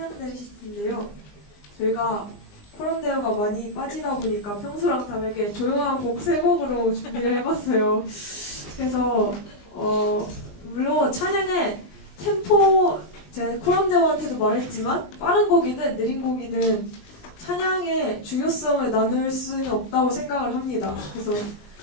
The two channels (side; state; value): right; late; 20 ms